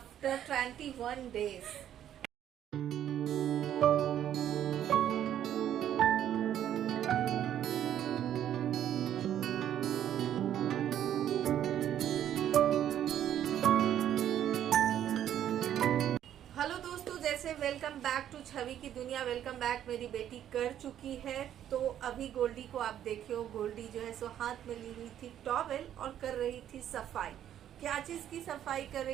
21 days. Hello दोस्तों, जैसे वेलकम बैक टू छवि की दुनिया। वेलकम बैक मेरी बेटी कर चुकी है। तो अभी गोल्डी को आप देखे हो, गोल्डी जो है सो हाथ में ली हुई थी टॉवेल और कर रही थी सफाई। क्या चीज की सफाई कर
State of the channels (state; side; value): quieter; left; 10.7 dB